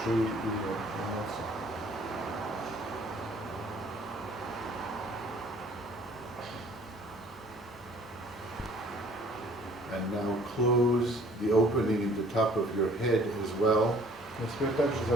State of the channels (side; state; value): both; normal; correlation 0.56